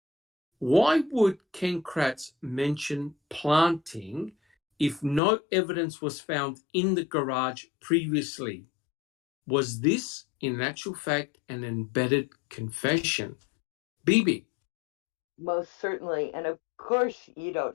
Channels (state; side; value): drops out; right; at 5.2 s